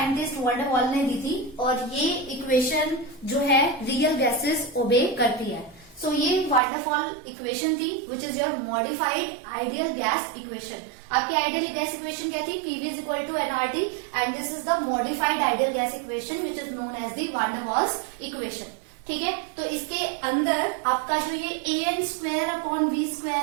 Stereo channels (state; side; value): drops out; left; at 6.6 s